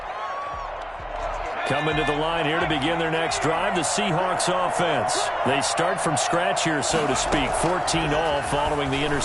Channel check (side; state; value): both; identical; correlation 1.00